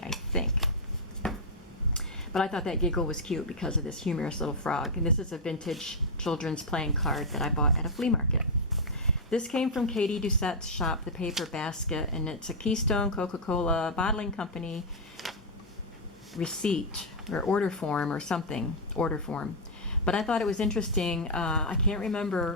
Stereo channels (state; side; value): normal; both; correlation -0.04